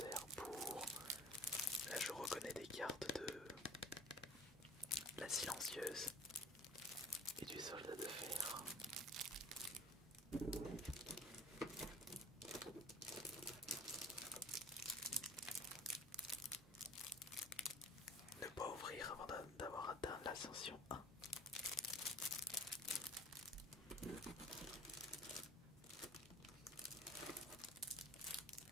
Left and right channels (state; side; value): normal; both; correlation 0.45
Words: pour... Là je reconnais des cartes de la silencieuse et du soldat de fer. Ne pas ouvrir avant d'avoir atteint l'ascension 1.